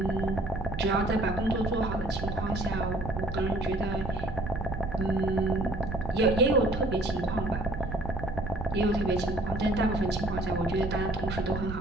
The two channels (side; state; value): right; noise; rumble, 7 dB below the sound